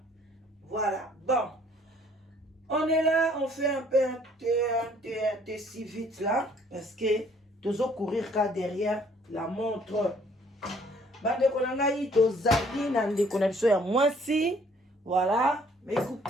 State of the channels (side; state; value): both; normal; correlation 0.60